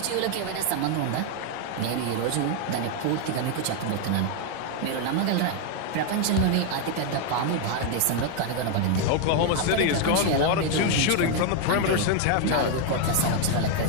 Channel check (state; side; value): different; both; correlation 0.01